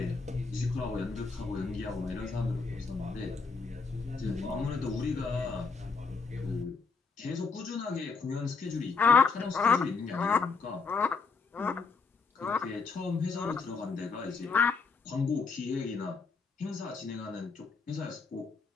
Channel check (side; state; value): right; quieter; 4.7 dB